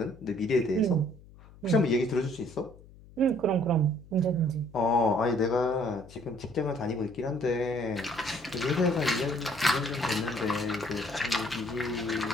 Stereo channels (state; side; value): noise; left; hum, 22 dB below the sound